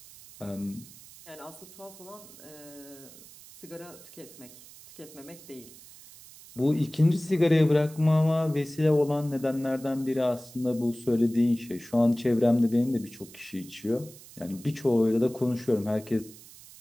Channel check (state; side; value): noise; right; hiss, 20 dB below the sound